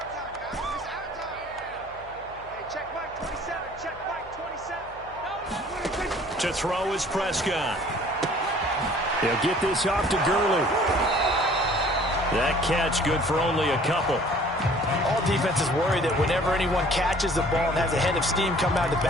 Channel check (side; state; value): left; noise; hum, 22 dB below the sound